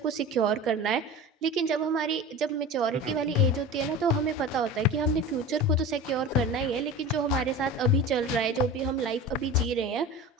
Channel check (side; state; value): both; normal; correlation 0.33